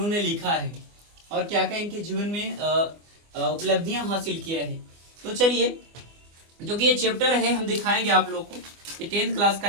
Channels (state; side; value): late; left; 24 ms